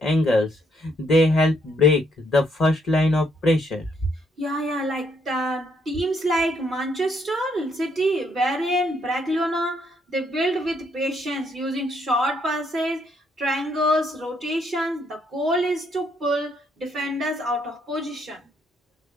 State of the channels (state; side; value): normal; both; correlation 0.72